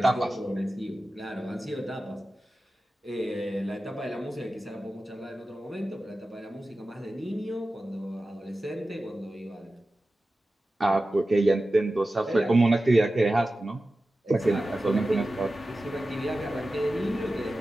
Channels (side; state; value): both; normal; correlation 0.94